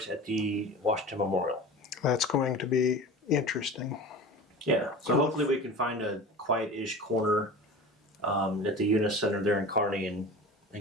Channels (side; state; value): both; normal; correlation 0.35